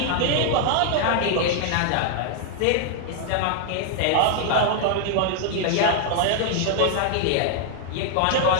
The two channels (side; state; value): both; different; correlation 0.00